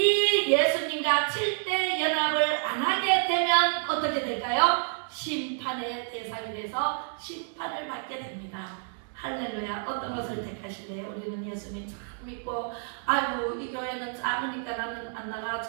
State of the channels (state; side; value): silent; left; digital silence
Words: 예수님과 7대 연합을 안 하게 되면 어떻게 될까요? 심판의 대상이 돼서 심판을 받게 됩니다. 할렐루야. 어떤 것을 택하실래요? 우리는 예수님 참 믿고, 아이고 이 교회는 작으니까 나는 안 나가,